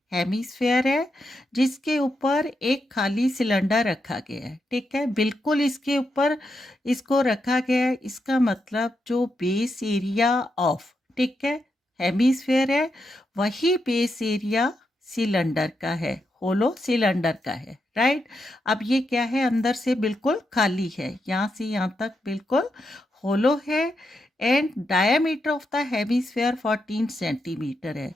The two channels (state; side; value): normal; both; correlation 0.84